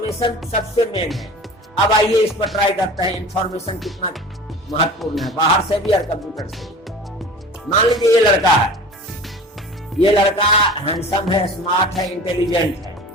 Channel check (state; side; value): normal; both; correlation 0.39